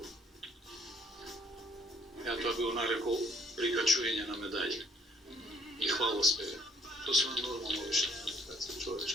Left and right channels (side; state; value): both; normal; correlation 0.63